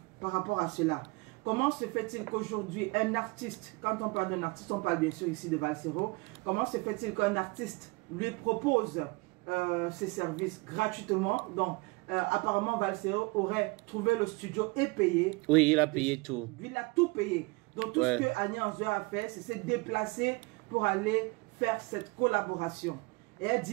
par rapport à cela. Comment se fait-il qu'aujourd'hui, un artiste, quand on parle d'un artiste, on parle bien sûr ici de Valsero, comment se fait-il qu'un artiste lui propose ses services gratuitement? Donc, apparemment, Valsero aurait trouvé le studio et payé. Oui, il a payé tout. Il a tout payé. Donc, tout ce que Annie Anzouer a fait, c'est se déplacer pour aller faire cette collaboration. Et elle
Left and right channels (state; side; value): quieter; left; 26.6 dB